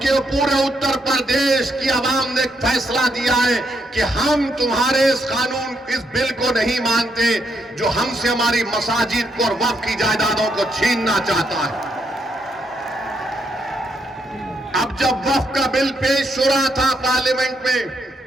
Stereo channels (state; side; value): normal; both; correlation 0.77